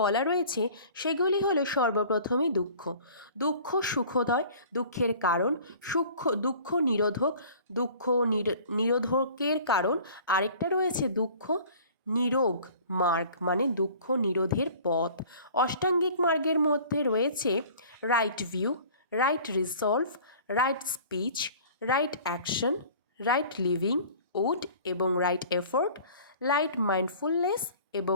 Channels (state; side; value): inverted; both; correlation -0.47